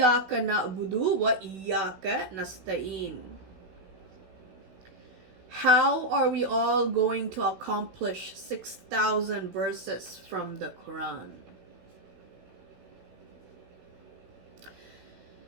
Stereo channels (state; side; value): late; left; 16 ms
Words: na'budu wa iyyaka nasta'in. How are we all going to accomplish 6,000 verses from the Quran?